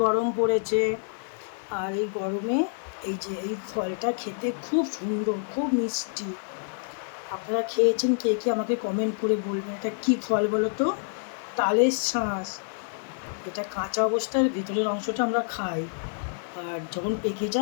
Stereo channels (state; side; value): silent; right; digital silence